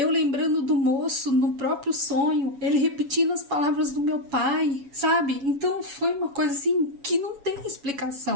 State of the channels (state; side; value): late; left; 7.1 ms